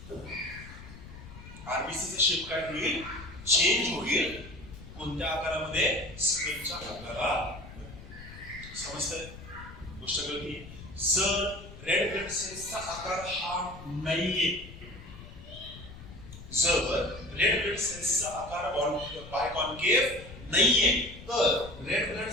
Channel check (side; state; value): left; noise; rumble, 15 dB below the sound